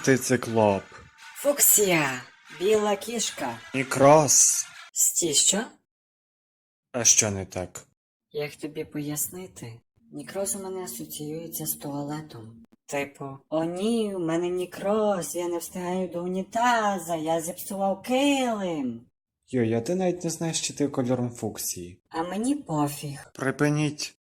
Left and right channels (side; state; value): both; identical; correlation 1.00